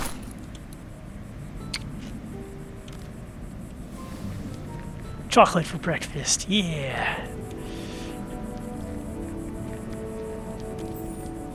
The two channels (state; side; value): identical; both; correlation 1.00